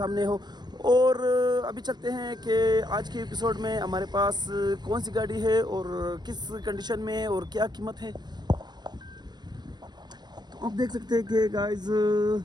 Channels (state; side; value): late; left; 0.21 ms